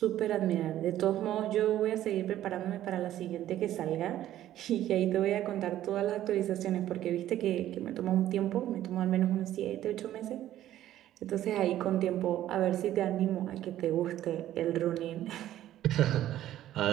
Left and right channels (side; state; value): left; quieter; 12.9 dB